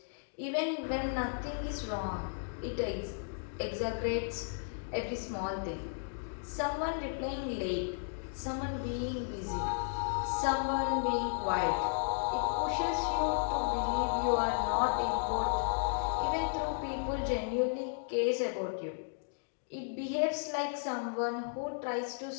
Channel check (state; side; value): silent; right; digital silence